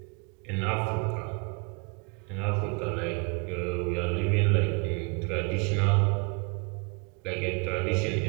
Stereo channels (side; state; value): left; quieter; 32.3 dB